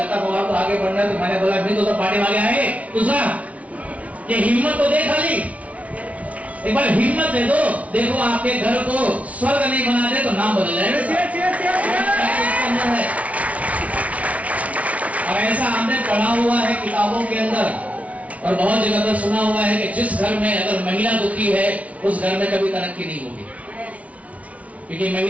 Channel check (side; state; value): left; late; 0.067 ms